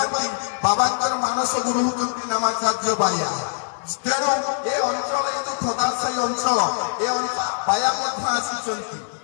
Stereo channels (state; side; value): silent; right; digital silence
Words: ବାବାଙ୍କର ମାନସ ଗୁରୁ ହେଉଛନ୍ତି ନାମାଚାର୍ଯ୍ୟ ବାୟା। ତେଣୁ ଏ ଅଞ୍ଚଳ, ଏ ଯୋଉ ଖୋଦାସାହି ଅଞ୍ଚଳ, ଏ ବାୟା ମଧ୍ୟ ଆସିଛନ୍ତି,